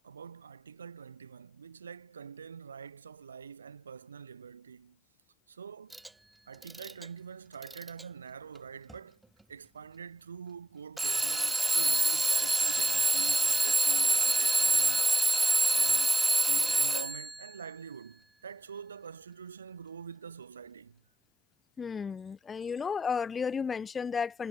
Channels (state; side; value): normal; both; correlation 0.93